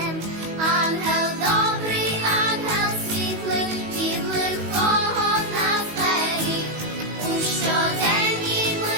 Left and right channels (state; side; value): late; left; 19 ms